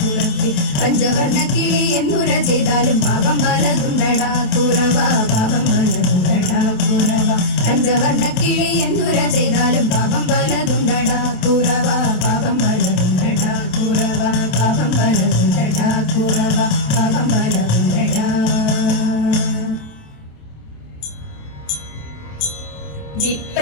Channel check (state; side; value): late; right; 27 ms